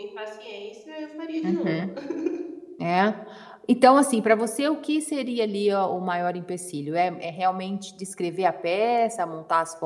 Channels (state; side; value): identical; both; correlation 1.00